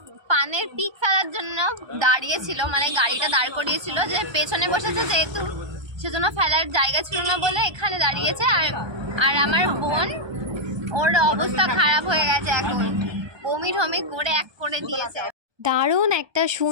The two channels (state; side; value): late; left; 1.2 ms